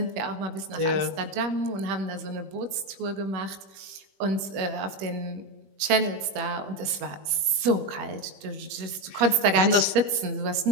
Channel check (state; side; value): late; left; 21 ms